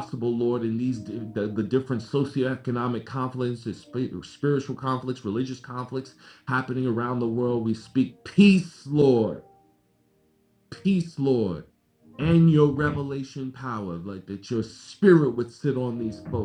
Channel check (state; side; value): identical; both; correlation 1.00